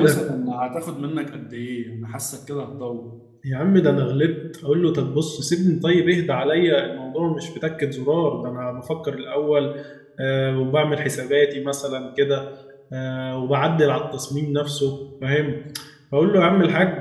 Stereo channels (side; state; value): both; identical; correlation 1.00